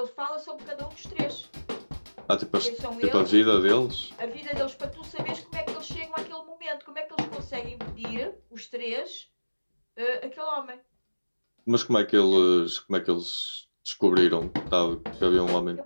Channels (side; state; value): both; inverted; correlation -1.00